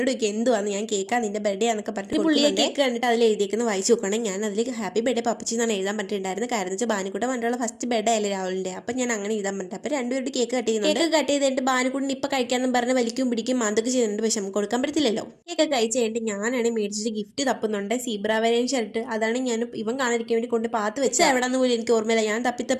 ചോദിക്കും എന്തുവാന്ന്. ഞാൻ കേൾക്കാൻ നിന്റെ ബർത്ത്ഡേ ആണെന്നൊക്കെ പറഞ്ഞിട്ട് പുള്ളിയെ കേക്ക് കണ്ടിട്ട് അതിൽ എഴുതിയേക്കുന്ന വായിച്ചു നോക്കുകയാണെങ്കിൽ ഞാൻ അതിൽ ഹാപ്പി ബർത്ത്ഡേ പപ്പച്ചി എന്നാണ് എഴുതാൻ പറ്റിയിട്ടുണ്ടായിരുന്നത്. കാരണം വെച്ചാൽ ബാനുക്കുട്ടൻ വണ്ടിയുള്ള ഫസ്റ്റ് ബർത്ത്ഡേ അല്ലേ രാവിലെ. അപ്പം ഞാൻ അങ്ങനെ എഴുതാൻ പറ്റും. അപ്പം രണ്ടുപേരുടെ കേക്ക് കട്ട് ചെയ്യുന്നുണ്ട്. കേക്ക് കട്ട് ചെയ്തിട്ട് ബാനുക്കുട്ടൻ ഇപ്പം കഴിക്കാമെന്ന് പറഞ്ഞ് വലിക്കും പിടിക്കും അതൊക്കെ ചെയ്യുന്നുണ്ട്. പക്ഷെ നമുക്ക് കൊടുക്കാൻ പറ്റത്തില്ലല്ലോ. കേക്ക് കഴിച്ച് കഴിഞ്ഞിട്ട് ഞാനാണ് മേടിച്ചിട്ട് ഗിഫ്റ്റ് തപ്പുന്നുണ്ട്. സീബ്ര വരേൻ ഷർട്ട്. അതാണ് ഞാൻ ഇവൻ കാണാതിരിക്കാൻ വേണ്ടി കൊണ്ട് പാത്ത് വെച്ച് എവിടെന്ന് പോലും എനിക്ക് ഓർമ്മയില്ല. ഞാൻ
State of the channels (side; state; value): both; identical; correlation 1.00